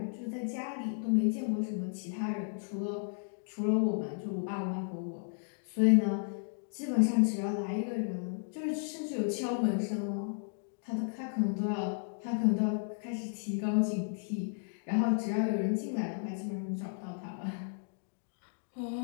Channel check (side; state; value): right; silent; digital silence